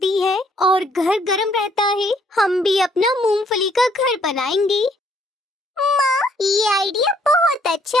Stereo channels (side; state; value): both; normal; correlation 0.66